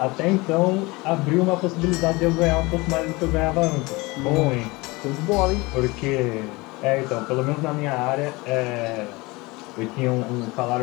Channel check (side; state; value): right; quieter; 23.6 dB